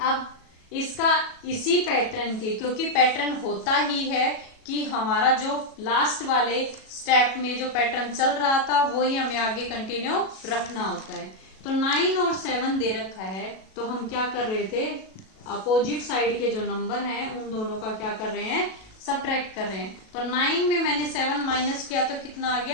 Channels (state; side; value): late; right; 37 ms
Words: इसका इसी पैटर्न के, क्योंकि पैटर्न होता ही है कि हमारा जो लास्ट वाले स्टेप में जो पैटर्न चल रहा था वही हमें आगे कंटिन्यू रखना होता है। तो 9 और 7 दे रखा है, तो हम क्या कर रहे थे, अपोजिट साइड के जो नंबर हैं उन दोनों का क्या कर रहे हैं, सब्ट्रैक्ट कर रहे हैं। तो 9 में मैंने 7 माइनस किया तो कितना आ